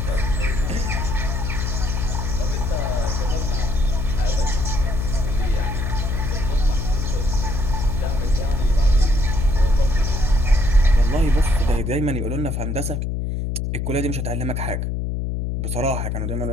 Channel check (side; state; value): left; noise; hum, 1 dB below the sound